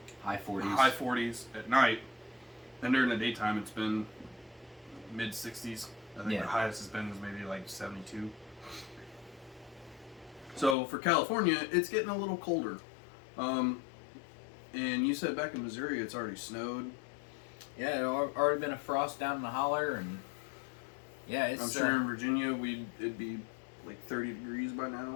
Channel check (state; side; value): drops out; right; at 10.8 s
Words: High 40s. High 40s at night. And during the daytime, it's been mid 60s. I think the highest has been is maybe like 72. So for California, it's getting a little colder. And you said back in Missouri, it's already snowed. Yeah, it already been a frost down in the holler, and yeah, it's. I'm sure in Virginia it'd be like 30 degrees by